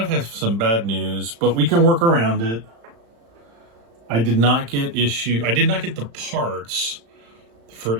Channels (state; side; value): late; left; 35 ms